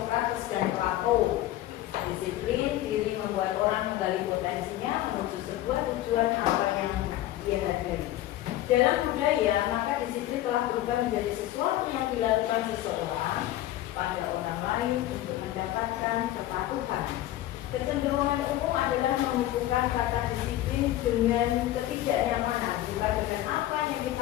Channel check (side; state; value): right; quieter; 14.3 dB